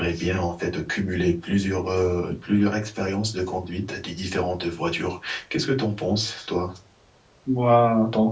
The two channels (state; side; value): identical; both; correlation 1.00